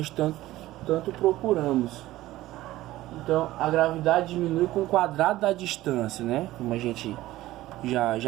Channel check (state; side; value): quieter; left; 16.2 dB